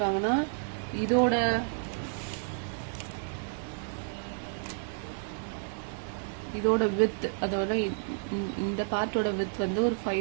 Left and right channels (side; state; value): left; silent; digital silence